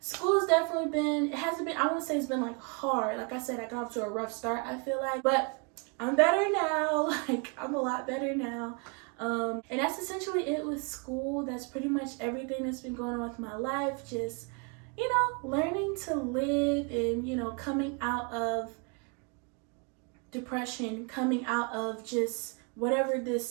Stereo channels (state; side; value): quieter; left; 35.1 dB